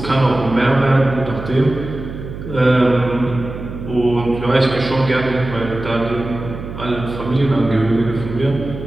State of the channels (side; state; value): right; noise; hum, 10 dB below the sound